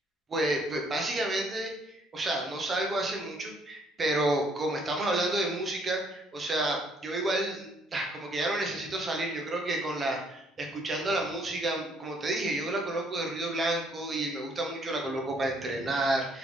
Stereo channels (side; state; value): both; normal; correlation 0.66